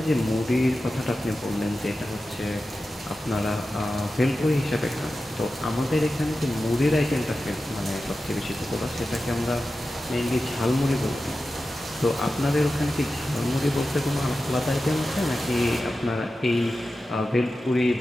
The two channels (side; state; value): both; normal; correlation 0.93